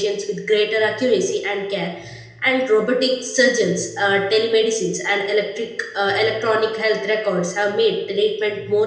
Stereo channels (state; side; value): identical; both; correlation 1.00